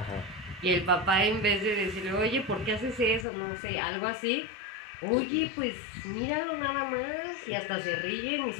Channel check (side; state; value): right; drops out; at 3.2 s